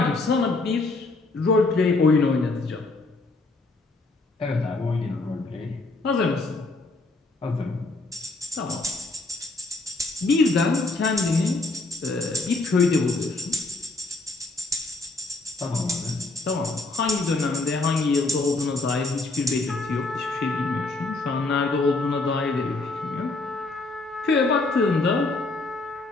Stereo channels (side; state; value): right; quieter; 3.2 dB